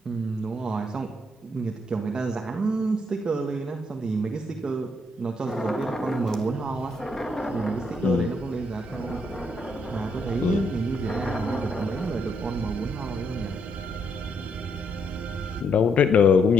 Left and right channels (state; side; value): normal; both; correlation 0.74